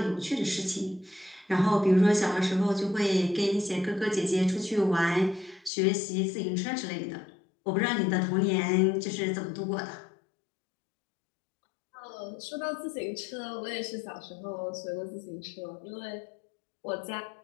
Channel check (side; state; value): right; drops out; at 5.7 s